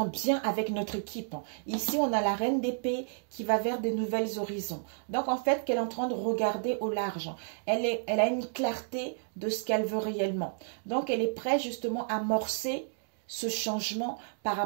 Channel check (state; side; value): silent; left; digital silence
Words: bien avec notre équipe. Ici, on a la reine d'épée qui va vers des nouvelles horizons. Donc, en fait, qu'elle est en train de regarder au large. Elle a une clarté de ce qu'elle veut réellement. Donc, elle est prête justement à amorcer ce changement par